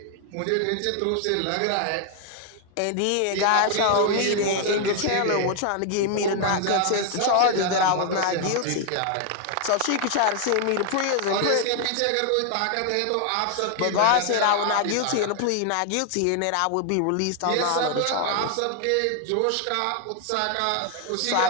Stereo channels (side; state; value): both; different; correlation 0.00